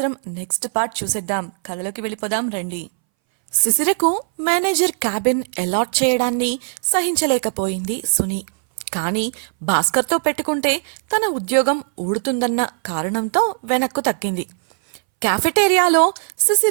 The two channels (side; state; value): left; silent; 64 dB below the other